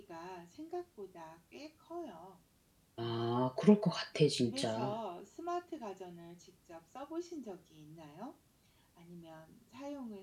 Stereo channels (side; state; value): both; identical; correlation 1.00